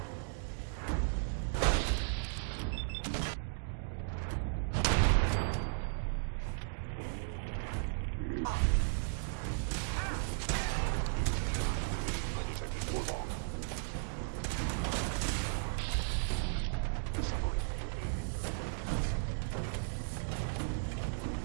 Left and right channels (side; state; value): left; silent; digital silence